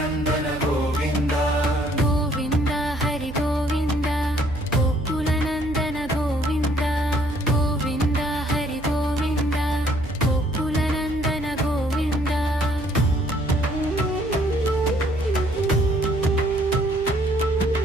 గోవింద. గోవింద హరి గోవింద గోకుల నందన గోవింద. గోవింద హరి గోవింద గోకుల నందన గోవింద.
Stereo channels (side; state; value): right; noise; hum, 14 dB below the sound